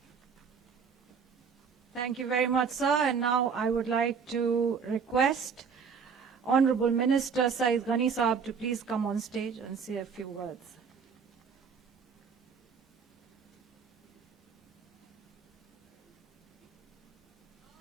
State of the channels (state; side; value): quieter; left; 6.1 dB